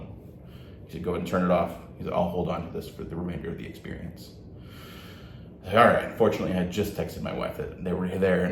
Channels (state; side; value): identical; both; correlation 1.00